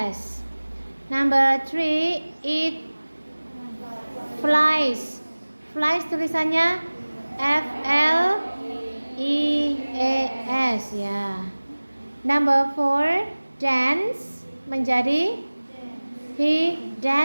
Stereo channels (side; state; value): both; inverted; correlation -1.00